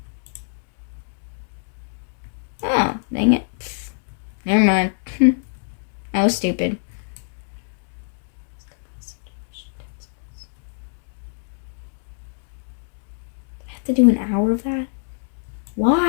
Oh, dang it. Never mind. I was stupid. I have to do an hour of that?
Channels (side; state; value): right; silent; digital silence